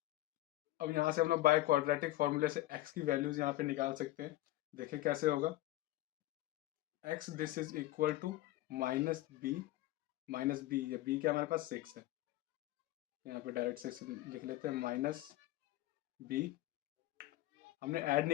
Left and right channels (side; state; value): right; quieter; 16.5 dB